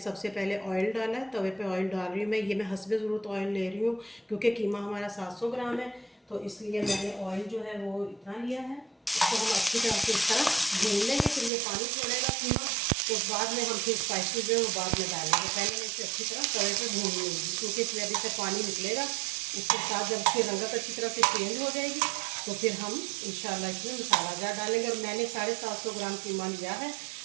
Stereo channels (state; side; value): drops out; left; at 11.5 s